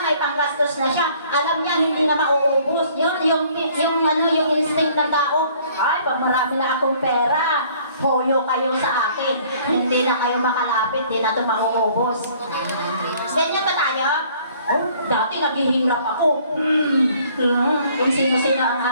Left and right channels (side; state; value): both; inverted; correlation -0.58